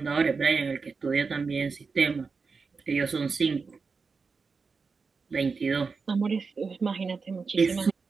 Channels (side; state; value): left; quieter; 4.8 dB